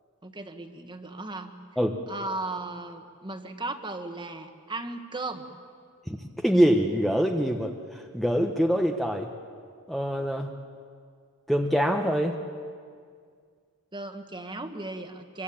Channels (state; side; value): normal; both; correlation 0.84